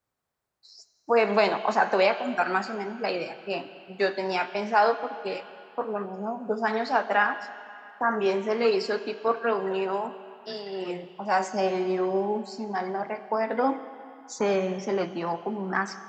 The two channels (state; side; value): identical; both; correlation 1.00